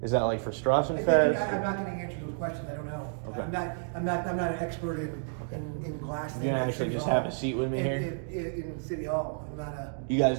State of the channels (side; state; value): left; silent; digital silence